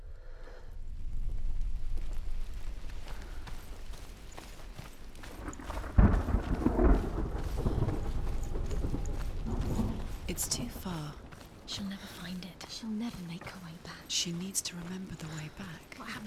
It's too far. She'll never find it. She'll never make her way back. She needs to remember the way back. What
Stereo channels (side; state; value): both; identical; correlation 1.00